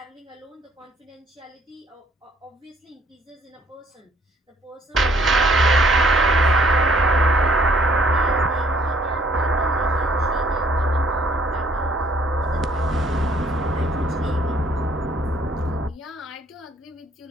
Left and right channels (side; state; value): both; normal; correlation 0.62